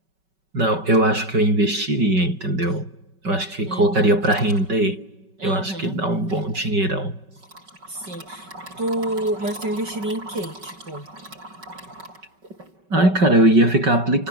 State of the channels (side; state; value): left; late; 5.3 ms